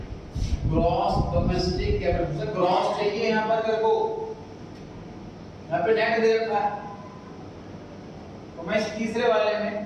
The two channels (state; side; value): identical; both; correlation 1.00